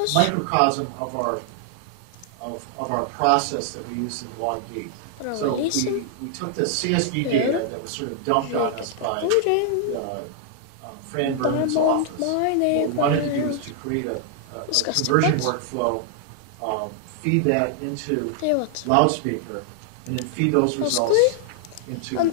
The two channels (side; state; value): both; different; correlation 0.00